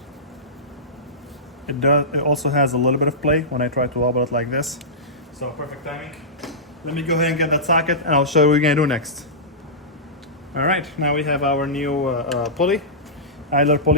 It also has a little bit of play when I try to wobble it like this. So perfect timing. Let me go ahead and get that socket, and I'll show you what we're gonna do next. All right, now we have our new pulley, idler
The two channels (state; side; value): normal; both; correlation -0.16